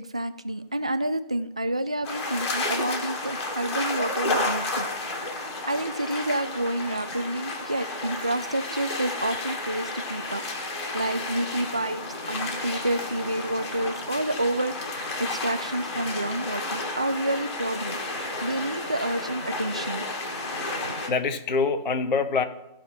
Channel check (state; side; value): inverted; both; correlation -0.48